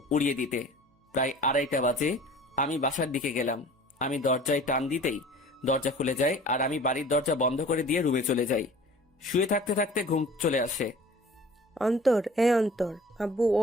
উড়িয়ে দিতে। প্রায় 2:30 বাজে আমি বাসার দিকে গেলাম। আমি দরজায় টান দিতেই দরজা খুলে যায়, আর আমি বাড়ির দরজা বন্ধ করে দিয়ে রুমে চলে যাই। শুয়ে থাকতে থাকতে ঘুম চলে আসে। অন্তর, অন্তর, আব্বু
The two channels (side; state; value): both; normal; correlation 0.46